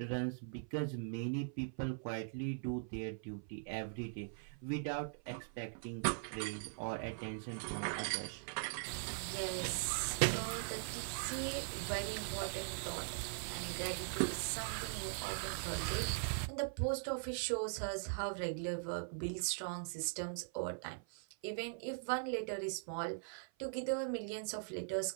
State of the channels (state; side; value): silent; left; 50 dB below the other